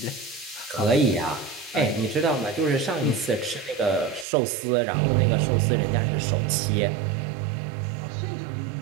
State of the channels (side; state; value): left; drops out; at 4.2 s